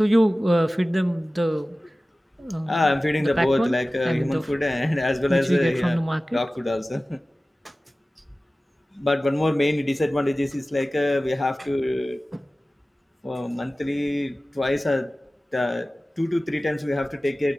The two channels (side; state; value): both; normal; correlation 0.97